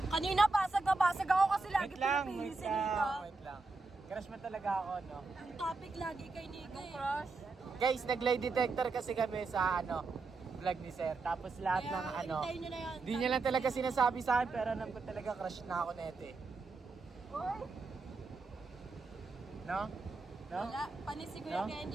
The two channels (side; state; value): left; quieter; 3.8 dB